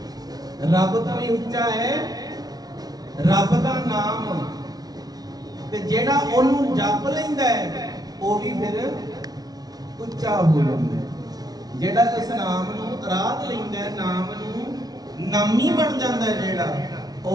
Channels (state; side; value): late; left; 0.19 ms